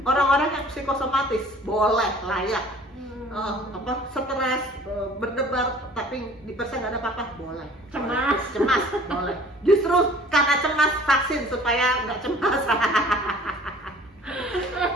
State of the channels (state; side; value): normal; both; correlation 0.50